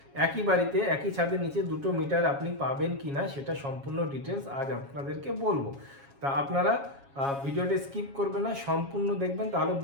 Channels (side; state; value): left; late; 7.3 ms